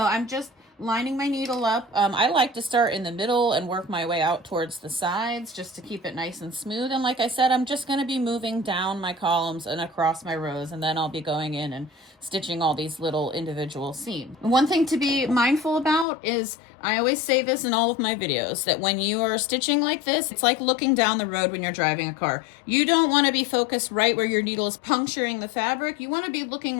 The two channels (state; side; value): drops out; right; at 16.1 s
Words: I'm just lining my needle up. I like to start in the middle and work my way out towards the sides just to keep it nice and smooth. And like I said, I'm just going to be moving down my columns and across my rows, and then I'll be going in and stitching all these little individual seams. One thing to be mindful about is, I always say this in all of my videos, that when you are stitching like this, it's like looking down the road when you're driving a car. You don't want to be focused right where your needle is puncturing the fabric. You want to be